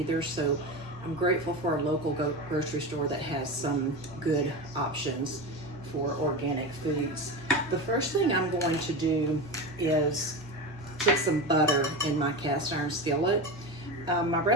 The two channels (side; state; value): both; normal; correlation 0.22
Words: so I'm grateful for a local grocery store that has some good options for organic foods. The first thing I'm going to do is put some butter in my cast iron skillet. My